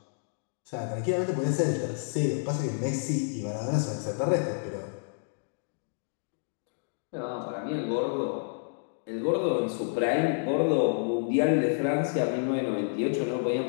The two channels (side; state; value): right; silent; digital silence